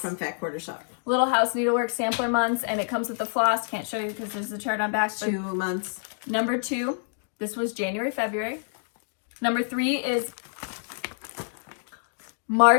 Fat Quarter Shop. Little House Needleworks sampler months, and it comes with the floss. Can't show you because there's a chart on back. 2 months. Number 2, this was January, February. Number 3 is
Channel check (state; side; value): silent; right; digital silence